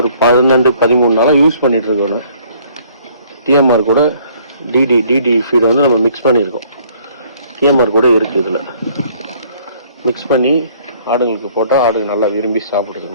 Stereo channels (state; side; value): inverted; both; correlation -0.60